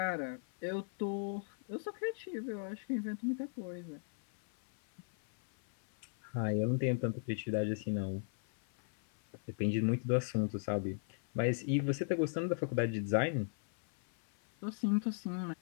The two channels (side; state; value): right; silent; 53 dB below the other